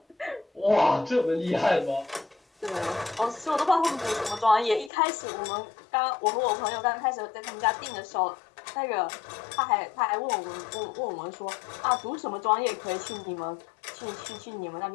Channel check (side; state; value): right; drops out; at 4.9 s